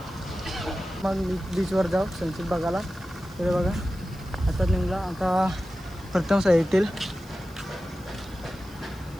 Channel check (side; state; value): left; noise; hiss, 25 dB below the sound